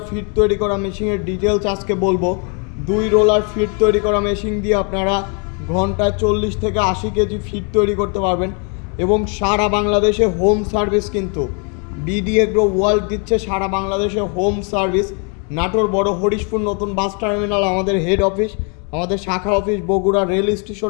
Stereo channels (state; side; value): quieter; right; 37.2 dB